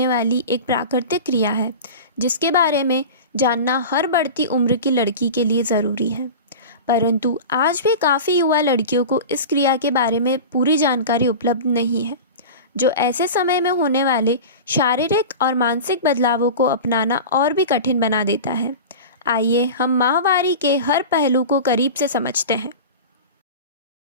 वाली एक प्राकृतिक क्रिया है जिसके बारे में जानना हर बढ़ती उम्र की लड़की के लिए ज़रूरी है। परंतु आज भी काफ़ी युवा लड़कियों को इस क्रिया के बारे में पूरी जानकारी उपलब्ध नहीं है, जो ऐसे समय में होने वाले शारीरिक और मानसिक बदलावों को अपनाना और भी कठिन बना देता है। आइए हम माहवारी के हर पहलू को करीब से समझते हैं।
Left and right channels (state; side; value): inverted; both; correlation -0.31